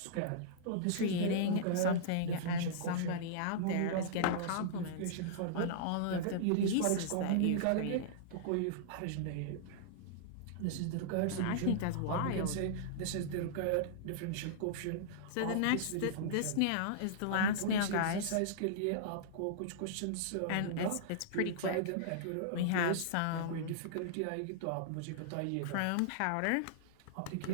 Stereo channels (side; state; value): both; different; correlation -0.02